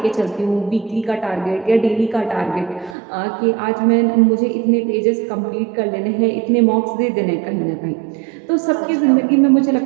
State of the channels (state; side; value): drops out; left; at 3.0 s